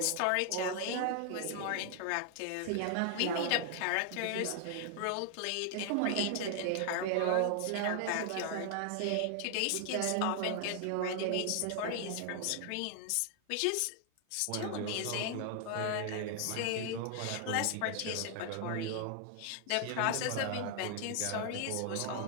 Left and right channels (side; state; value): both; different; correlation 0.00